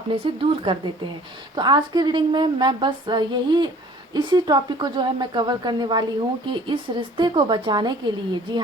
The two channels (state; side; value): normal; both; correlation 0.51